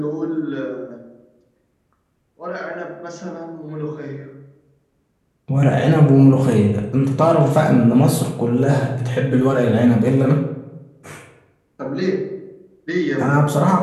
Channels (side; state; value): both; identical; correlation 1.00